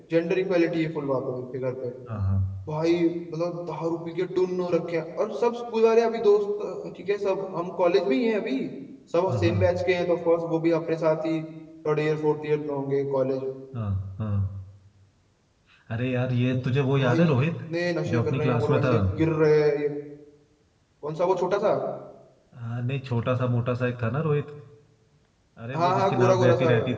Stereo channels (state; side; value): identical; both; correlation 1.00